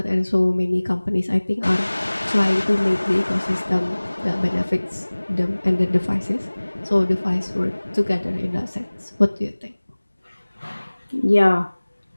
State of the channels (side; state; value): both; inverted; correlation -1.00